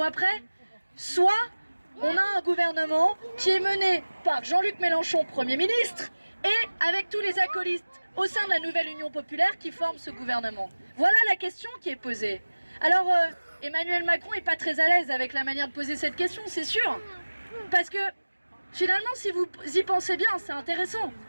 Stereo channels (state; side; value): inverted; both; correlation -1.00